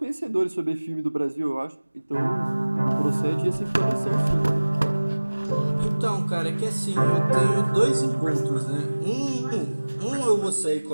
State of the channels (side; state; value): both; inverted; correlation -1.00